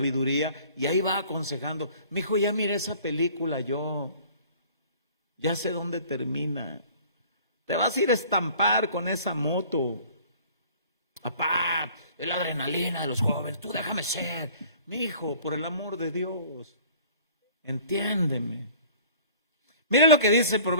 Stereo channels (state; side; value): inverted; both; correlation -0.50